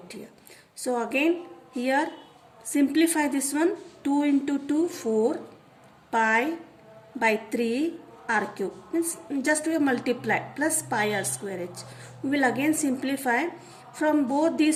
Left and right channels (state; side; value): identical; both; correlation 1.00